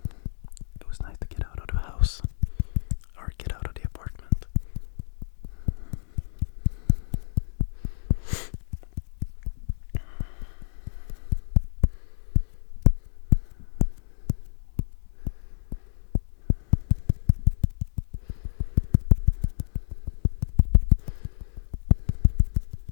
It was nice to get out of the house, or get out of the apartment.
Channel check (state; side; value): silent; right; 59 dB below the other